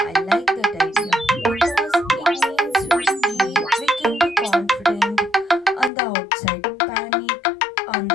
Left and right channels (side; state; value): right; drops out; at 5.9 s